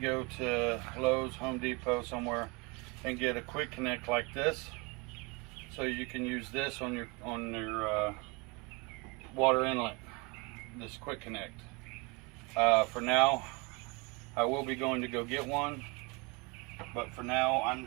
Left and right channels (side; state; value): left; quieter; 28.7 dB